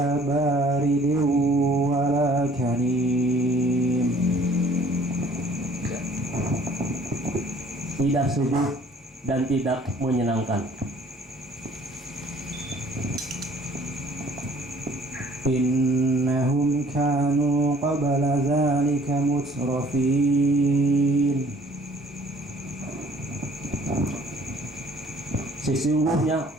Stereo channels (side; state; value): both; normal; correlation 0.56